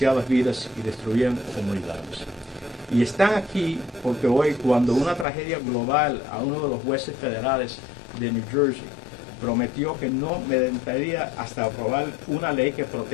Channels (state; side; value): drops out; right; at 5.2 s